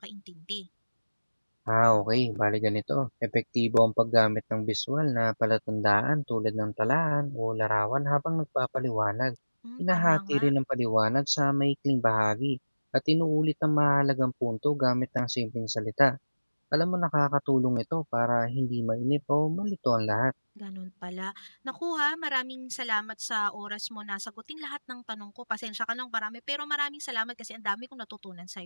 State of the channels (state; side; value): inverted; both; correlation -1.00